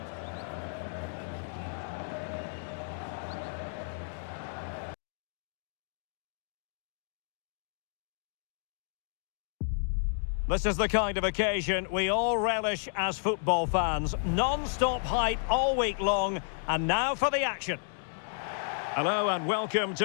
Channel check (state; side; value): silent; right; digital silence